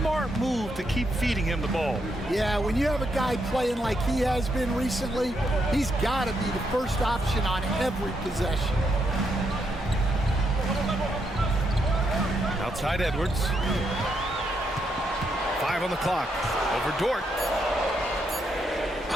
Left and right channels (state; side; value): normal; both; correlation 0.79